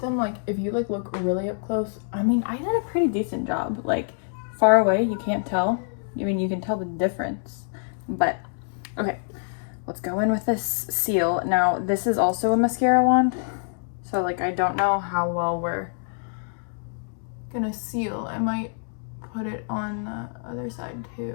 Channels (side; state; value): right; silent; 61 dB below the other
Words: them, like, if you like look really up close, I mean, I did a pretty decent job. Like, far away, you can't tell. I mean, you can tell the difference. But, okay, let's go in with this seal. Now, this is also a mascara wand. So, like, I don't know how well we're gonna seal. I might put it on the other side,